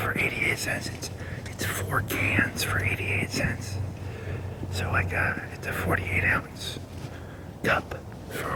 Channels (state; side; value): identical; both; correlation 1.00